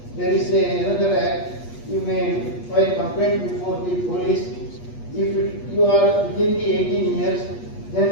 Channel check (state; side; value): late; right; 8.4 ms